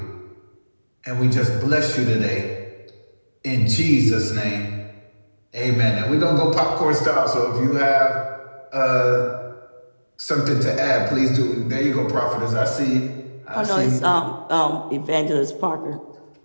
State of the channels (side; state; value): both; inverted; correlation -1.00